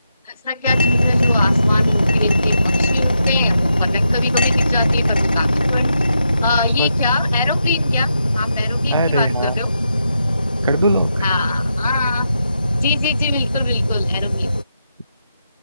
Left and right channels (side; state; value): both; inverted; correlation -0.84